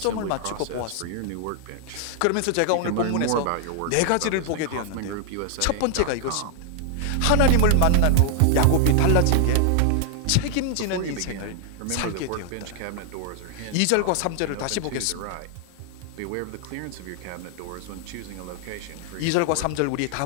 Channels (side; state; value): both; different; correlation 0.00